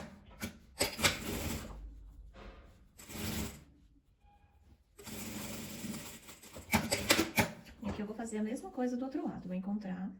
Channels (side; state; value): both; identical; correlation 1.00